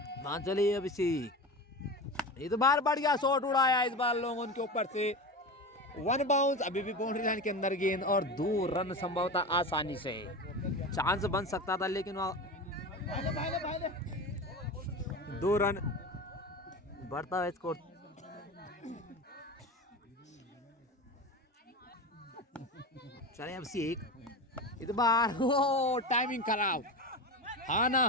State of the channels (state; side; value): normal; both; correlation 0.26